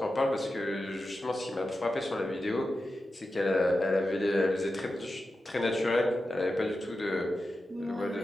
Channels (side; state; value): both; normal; correlation 0.91